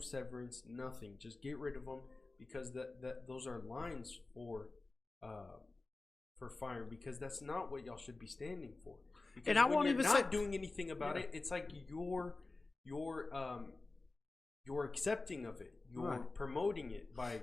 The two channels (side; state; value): right; quieter; 3.4 dB